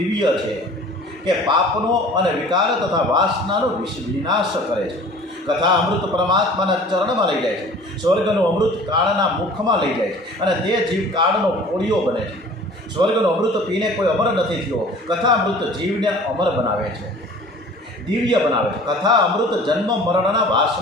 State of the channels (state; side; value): normal; both; correlation 0.46